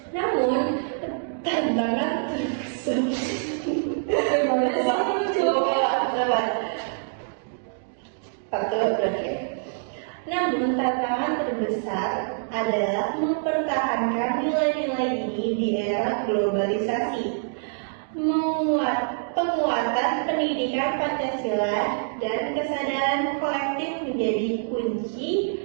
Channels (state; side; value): silent; left; digital silence